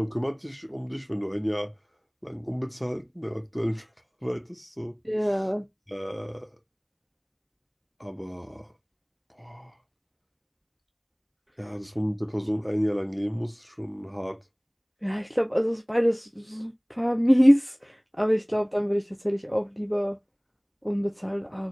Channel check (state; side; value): identical; both; correlation 1.00